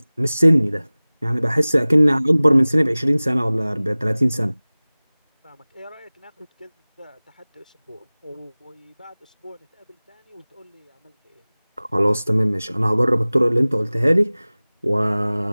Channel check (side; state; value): both; inverted; correlation -0.99